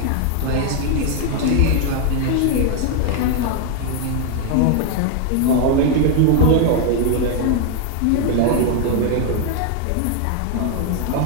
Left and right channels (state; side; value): different; both; correlation 0.00